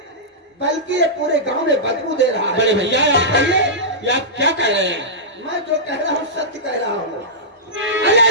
बल्कि ये पूरे गांव में बदबू दे रहा है। बड़े भैया आप कहिए, ये आप क्या कह रहे हैं? मैं जो कह रहा हूँ सत्य कह रहा हूँ। अरे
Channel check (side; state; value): both; normal; correlation -0.13